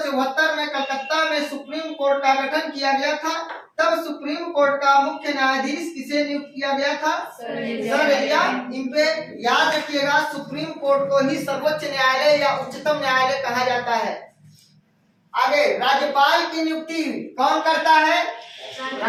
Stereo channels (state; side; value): identical; both; correlation 1.00